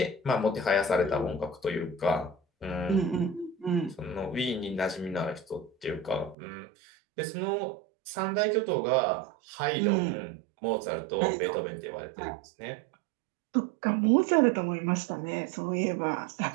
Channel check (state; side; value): drops out; left; at 6.4 s